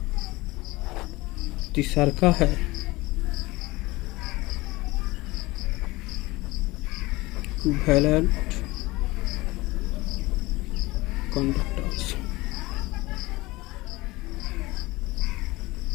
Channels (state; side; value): quieter; right; 21.0 dB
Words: तीसरा है वैलेंट कंडक्टेंस,